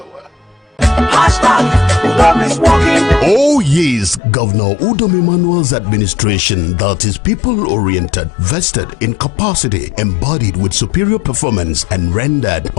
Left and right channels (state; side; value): drops out; right; at 4.2 s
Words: Oh yes, Governor Udom Emmanuel's administration that is people-oriented, vested in capacity, embodied with superior performance and rendered